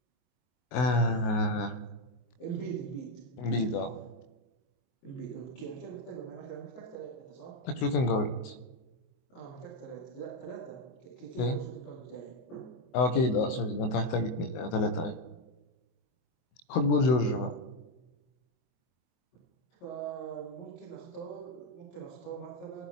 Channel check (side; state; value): right; late; 24 ms